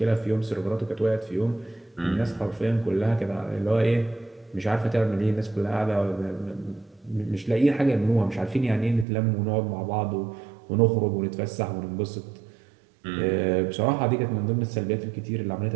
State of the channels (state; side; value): drops out; left; at 9.1 s